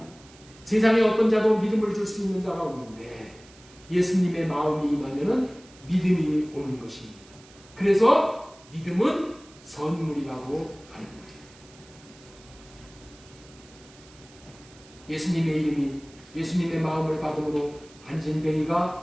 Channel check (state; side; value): noise; right; hiss, 24 dB below the sound